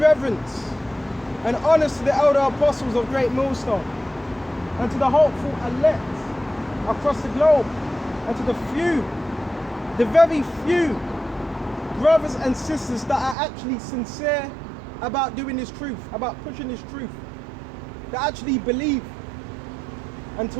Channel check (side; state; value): left; drops out; at 13.4 s